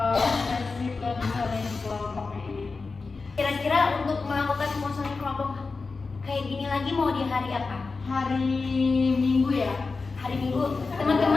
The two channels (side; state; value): right; quieter; 4.2 dB